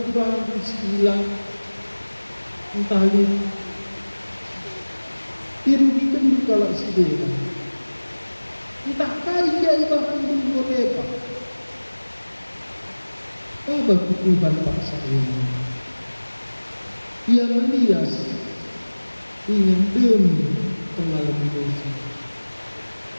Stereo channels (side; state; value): both; inverted; correlation -1.00